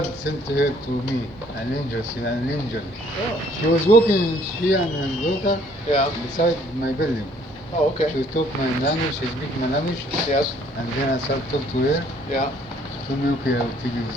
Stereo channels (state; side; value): normal; both; correlation 0.61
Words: sent her to me, an angel. She's an angel. Oh, She was walking, she and her daughter, yeah. beside my building. Oh, okay. She talk my language, she speak my language, Yes, and then I start talk to her. yeah. She told me, okay, I will take you